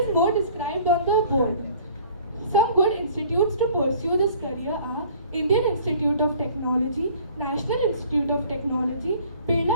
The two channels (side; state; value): both; inverted; correlation -0.52